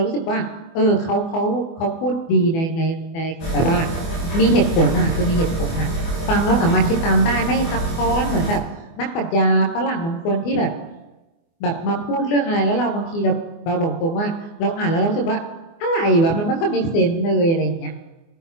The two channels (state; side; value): late; right; 24 ms